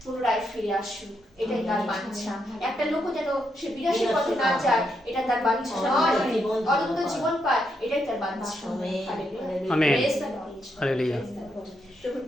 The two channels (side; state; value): both; normal; correlation 0.80